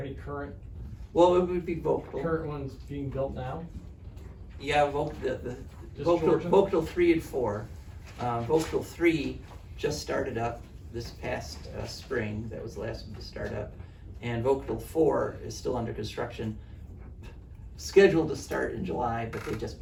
current Well, it would be Vogtle. ones being built now? Yeah, the Just Vogtle, Georgia? Vogtle 3 and 4. Vogtle 3 just started up this past spring. That was the last one to start up. And Vogtle 4 is still under construction, scheduled to start in July, but they just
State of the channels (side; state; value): both; identical; correlation 1.00